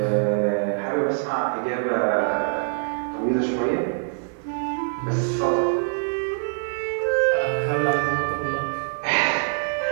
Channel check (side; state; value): left; silent; digital silence